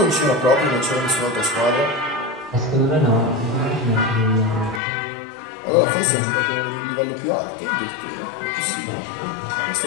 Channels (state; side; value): drops out; right; at 4.8 s